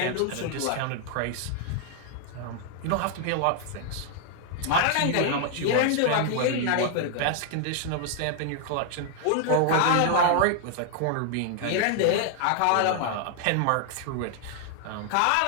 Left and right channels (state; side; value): different; both; correlation 0.00